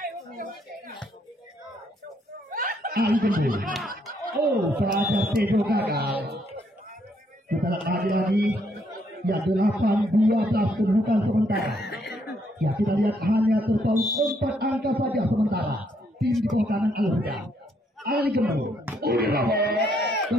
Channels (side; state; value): both; normal; correlation 0.72